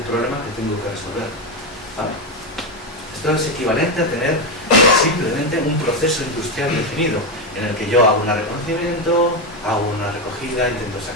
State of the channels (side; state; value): both; normal; correlation 0.09